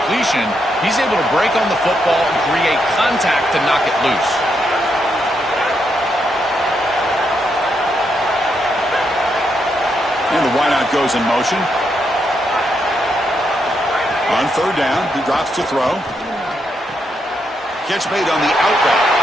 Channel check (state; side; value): normal; both; correlation 0.80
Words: he's able to break on the football and create contact to knock it loose. And the wideout goes in motion. On third down, he drops to throw. Catch made on the out route.